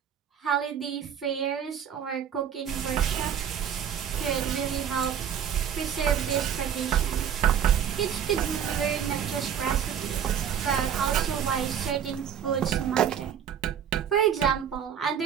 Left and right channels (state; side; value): quieter; left; 8.7 dB